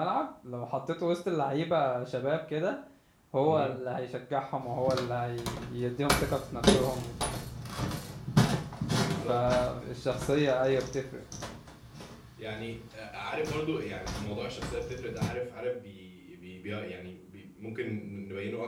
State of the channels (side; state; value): both; identical; correlation 1.00